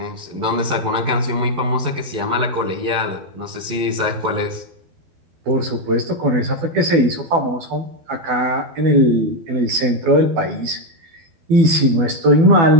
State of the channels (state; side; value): late; left; 12 ms